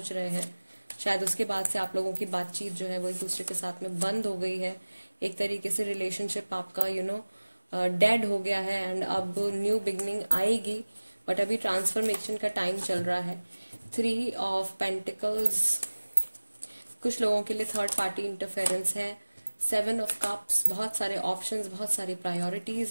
रहे हैं। शायद उसके बाद से आप लोगों की बातचीत जो है वो एक दूसरे के साथ में बंद हो गई है, एक तरीके से रिलेशनशिप आपका डेड हो गया है, एंड अब न्यू बिगनिंग आएगी, बट अभी ट्रांसफॉर्मेशन का टाइम चल रहा है। 3 ऑफ पेंटिकल्स, कुछ लोगों के लिए थर्ड पार्टी इंटरफेरेंस है। 7 ऑफ कप्स, बहुत सारे ऑप्शंस, बहुत सारी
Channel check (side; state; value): both; inverted; correlation -1.00